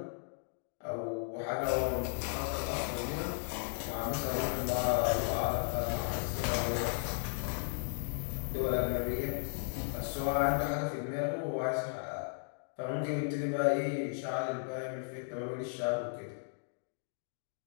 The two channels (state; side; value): silent; right; digital silence